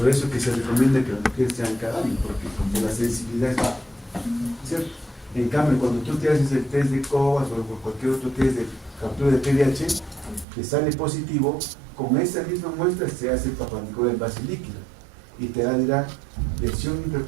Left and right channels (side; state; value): left; drops out; at 10.5 s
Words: eso que se recomienda que las mujeres sean cada año, porque como la sensibilidad es baja, ¿cierto? En cambio, cuando tú te haces el test de COVAS o cualquier otro test de captura de PDH, te sale positivo, con esa misma muestra se hace el Papa Nicolau en base líquida y te dirá lesión